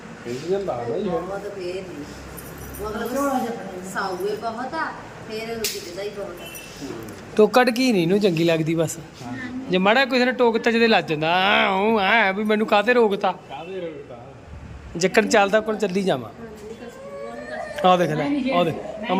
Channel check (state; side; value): identical; both; correlation 1.00